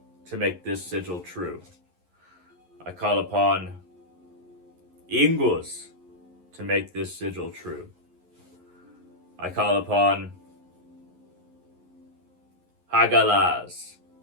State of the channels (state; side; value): late; left; 11 ms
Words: to make this sigil true. I call upon Ingus to make this sigil true. I call upon Hagalaz